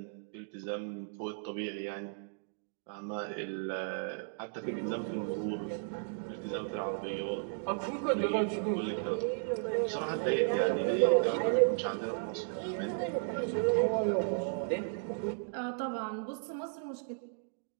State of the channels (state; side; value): silent; left; digital silence